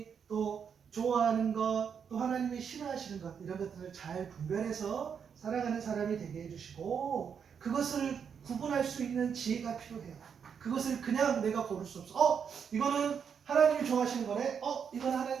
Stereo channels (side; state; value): left; quieter; 7.1 dB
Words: 또 좋아하는 것, 또 하나님이 싫어하시는 것 이런 것들을 잘 분별해서 살아가는 사람이 되게 해주시고 그것을 구분할 수 있는 지혜가 필요해요. 그것을 그냥 내가 고를 수 없어. 이거는 하나님이 좋아하시는 거네. 이건